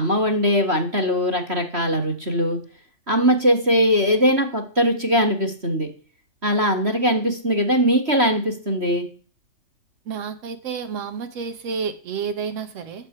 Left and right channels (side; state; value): left; late; 3.1 ms